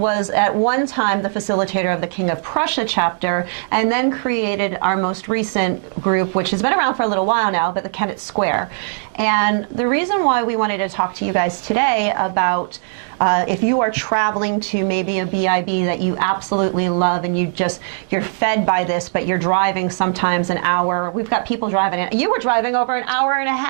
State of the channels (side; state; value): left; silent; digital silence